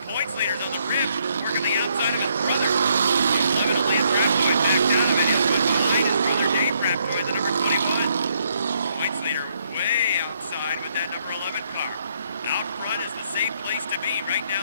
points leader's on the rim. Working the outside of his brother. 11 of Lance Raptoy back down of it. Here comes behind his brother Dave Raptoy, the number 21. Points leader way outside with that number 11 car. Out front is the safe place to be. Right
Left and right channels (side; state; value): both; inverted; correlation -0.72